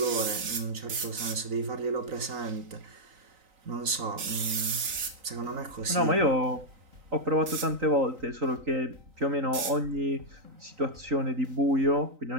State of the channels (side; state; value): left; late; 3.9 ms